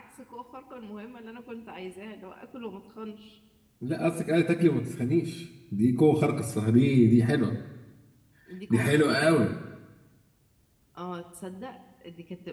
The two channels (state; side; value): identical; both; correlation 1.00